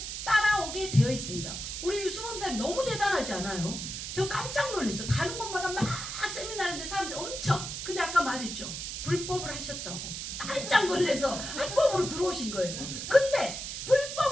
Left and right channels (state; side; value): noise; right; hiss, 6 dB below the sound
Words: 따라오게 되어 있습니다. 우리 유수범 사님 너무 대단하지 않아요? 저 깜짝 놀랐어요. 가는 곳마다 막 세미나 하는데 사람들이 엄청. 근데 아까 말했죠. 불법을 하셨다고. 깜짝 놀라서 합법으로 들어오신 거예요. 근데